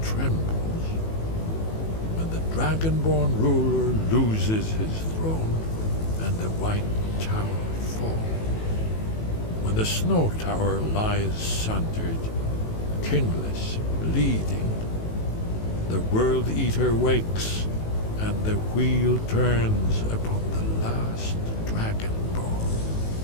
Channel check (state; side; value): late; right; 18 ms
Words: trembles. When the Dragonborn ruler loses his throne and the white tower falls. When the snow tower lies sundered, kingless, bleeding, the World Eater wakes, and the wheel turns upon the last Dragonborn.